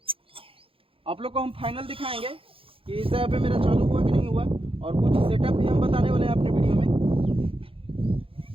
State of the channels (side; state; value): left; late; 0.27 ms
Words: आप लोग को हम फाइनल दिखाएंगे कि इस जगह पे मेरा चालू हुआ कि नहीं हुआ। और कुछ सेटअप भी हम बताने वाले हैं अपने वीडियो में।